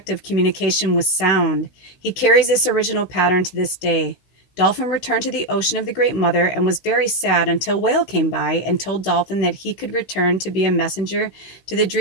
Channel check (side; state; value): right; late; 16 ms